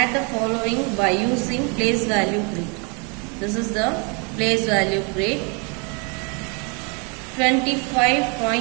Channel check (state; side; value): quieter; left; 34.2 dB